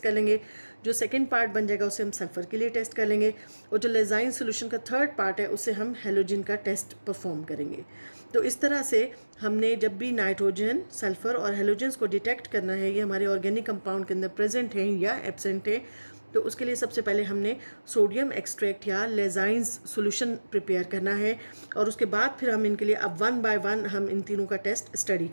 लेंगे। जो सेकंड पार्ट बन जाएगा उससे हम सल्फ़र के लिए टेस्ट कर लेंगे, और जो लेजाइन सोल्यूशन का थर्ड पार्ट है उससे हम हेलोजन का टेस्ट परफॉर्म करेंगे। तो इस तरह से हमने जब भी नाइट्रोजन, सल्फ़र और हेलोजन्स को डिटेक्ट करना है ये हमारे ऑर्गेनिक कंपाउंड के अंदर प्रेजेंट हैं या एब्सेंट हैं, तो उसके लिए सबसे पहले हमने सोडियम एक्सट्रैक्ट या लेजाइंस सॉल्यूशन प्रिपेयर करना है, और उसके बाद फिर हम इनके लिए अब 1 बाय 1 हम इन तीनों का टेस्ट स्टडी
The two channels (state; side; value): inverted; both; correlation -1.00